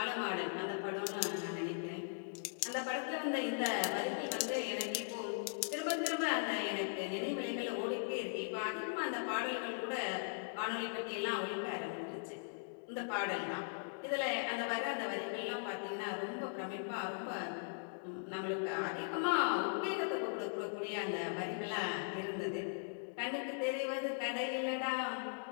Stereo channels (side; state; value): right; silent; digital silence